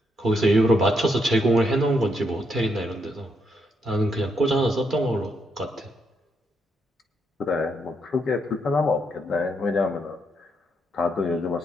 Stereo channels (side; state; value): both; normal; correlation 0.78